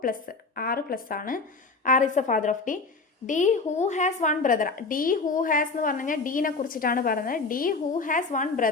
പ്ലസ് 6 പ്ലസ് ആണ്. R is the father of D. D who has 1 brother. D who has എന്ന് പറഞ്ഞു കഴിഞ്ഞാൽ ഡീനെ കുറിച്ചിട്ടാണ് പറഞ്ഞത്. D who has 1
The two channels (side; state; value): right; quieter; 4.0 dB